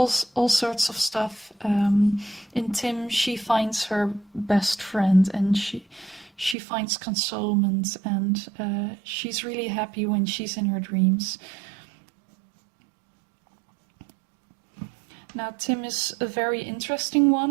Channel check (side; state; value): left; drops out; at 6.6 s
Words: sorts of stuff. In Tim, she finds her best friend, and she finds consolement, and she's really happy when she's in her dreams. Now, Tim is a very interesting